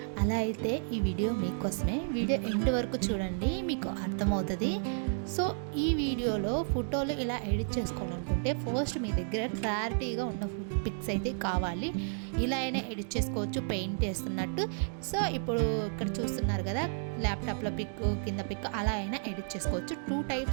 అలా అయితే ఈ వీడియో మీకోసమే. వీడియో ఎండ్ వరకు చూడండి, మీకు అర్థమవుతుంది. సో ఈ వీడియోలో ఫోటోలు ఇలా ఎడిట్ చేసుకోవాలనుకుంటే ఫస్ట్ మీ దగ్గర క్లారిటీగా ఉన్న పిక్స్ అయితే కావాలి. ఇలా అయినా ఎడిట్ చేసుకోవచ్చు పెయింట్ వేస్తున్నట్టు. సో ఇప్పుడు ఇక్కడ చూస్తున్నారు కదా, ల్యాప్టాప్లో పిక్, కింద పిక్, అలా అయినా ఎడిట్ చేసుకోవచ్చు. 2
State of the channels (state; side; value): silent; left; digital silence